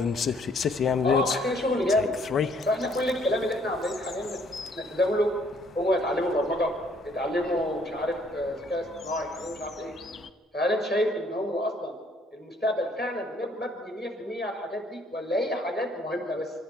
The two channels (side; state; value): both; normal; correlation 0.64